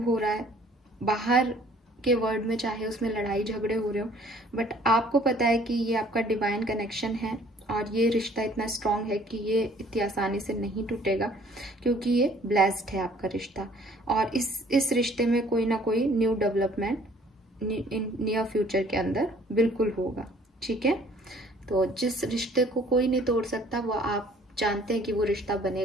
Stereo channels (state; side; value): normal; both; correlation 0.56